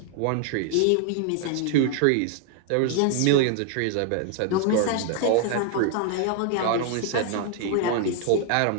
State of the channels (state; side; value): different; both; correlation 0.00